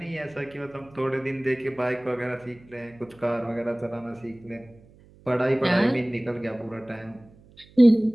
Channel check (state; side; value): noise; right; hum, 26 dB below the sound